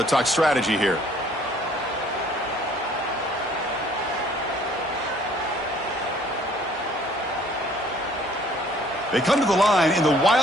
talk strategy here. They come to the line in the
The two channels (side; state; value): both; normal; correlation 0.58